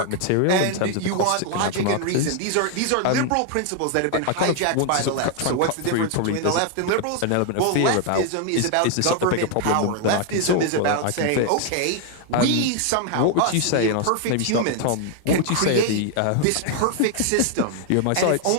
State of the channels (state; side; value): different; both; correlation 0.00